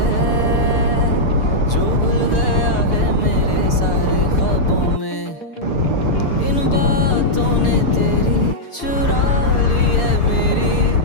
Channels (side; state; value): right; late; 6.8 ms